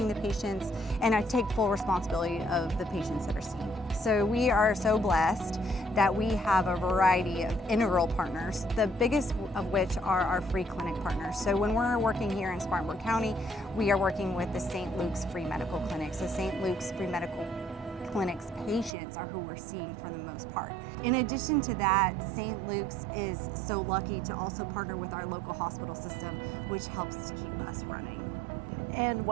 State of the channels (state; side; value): drops out; left; at 18.9 s